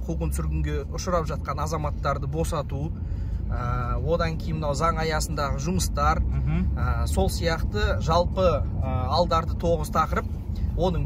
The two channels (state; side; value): identical; both; correlation 1.00